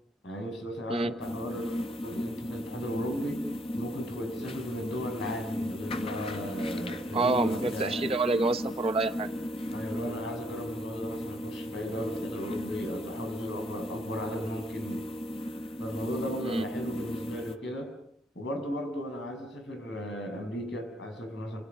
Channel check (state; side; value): normal; both; correlation 0.68